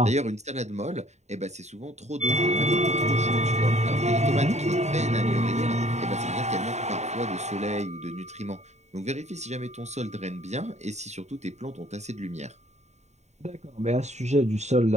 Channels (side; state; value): left; late; 0.33 ms